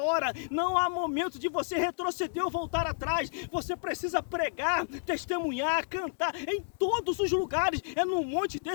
Não há momento de você retroceder ou voltar atrás. Você precisa pregar, testemunhar, cantar em todos os lugares. É num monte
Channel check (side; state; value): right; silent; digital silence